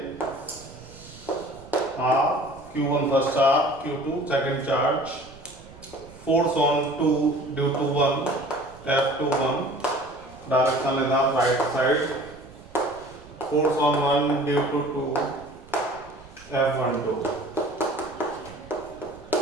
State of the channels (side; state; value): right; noise; rumble, 22 dB below the sound